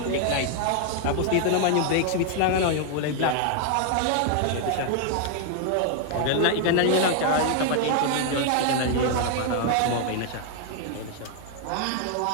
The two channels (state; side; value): different; both; correlation 0.00